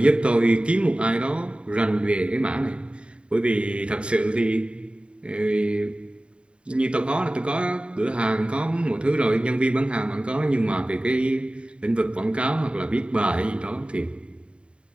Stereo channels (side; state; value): left; late; 0.055 ms